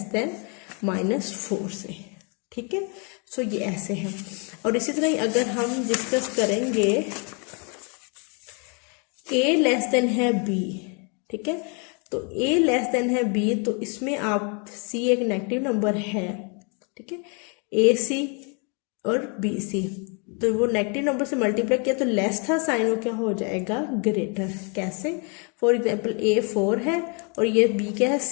देन -4 से, ठीक है। सो ये ऐसे है। और इसी तरह अगर हम डिस्कस करेंगे ए लेस देन है बी, ठीक है, तो ए लेस देन है बी, तो इसमें आप सी एक नेगेटिव नंबर है, ठीक है, ए सी और बी सी, तो वो नेगेटिव नंबर से मल्टीप्लाई किया तो लेस था साइन, वो क्या हो जाएगा, ग्रेटर। कैसे, फॉर एग्जांपल ए 4 है और ये बी क्या है,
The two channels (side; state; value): right; quieter; 36.1 dB